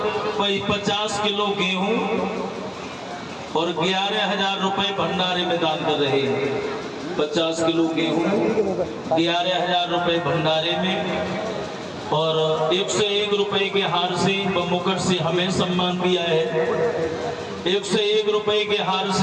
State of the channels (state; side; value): identical; both; correlation 1.00